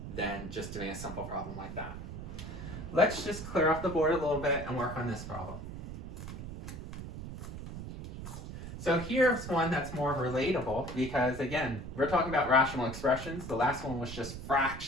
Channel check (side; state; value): right; noise; rumble, 9 dB below the sound